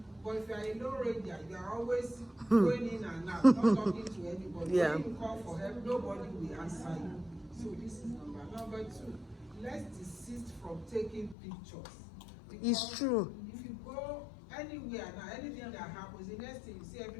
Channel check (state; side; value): drops out; right; at 11.4 s